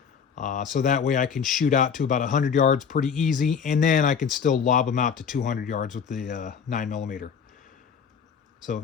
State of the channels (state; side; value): quieter; right; 6.8 dB